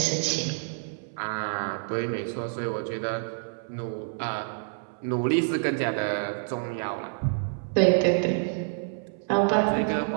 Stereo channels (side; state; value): left; silent; 60 dB below the other